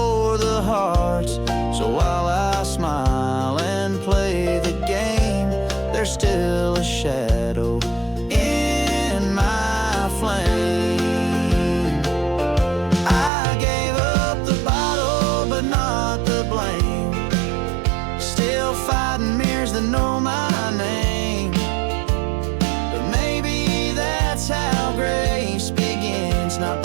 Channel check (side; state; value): left; drops out; at 13.3 s